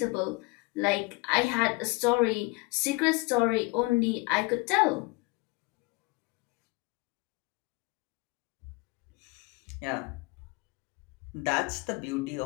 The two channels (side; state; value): right; quieter; 25.6 dB